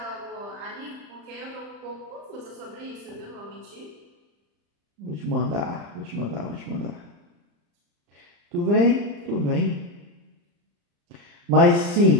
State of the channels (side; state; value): left; late; 35 ms